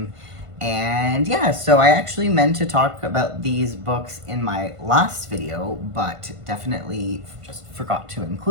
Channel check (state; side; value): late; left; 1.5 ms